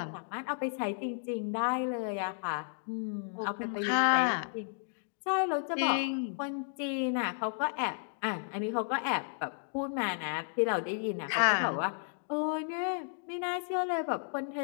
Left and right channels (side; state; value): right; silent; digital silence